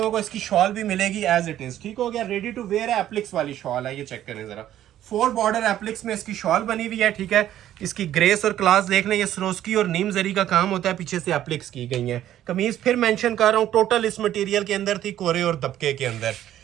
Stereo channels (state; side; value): quieter; left; 12.1 dB